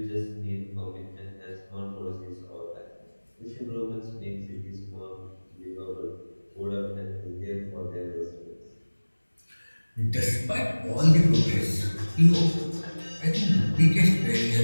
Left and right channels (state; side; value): inverted; both; correlation -1.00